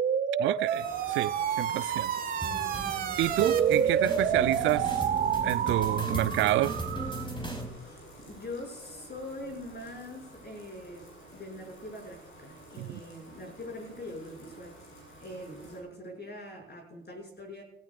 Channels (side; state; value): left; quieter; 8.4 dB